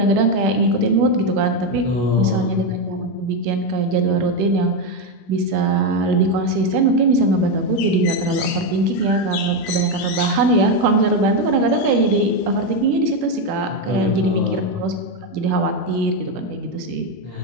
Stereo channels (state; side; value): normal; both; correlation 0.07